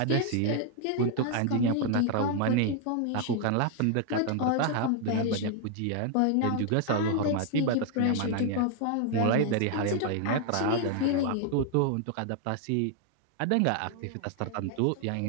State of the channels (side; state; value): both; different; correlation 0.00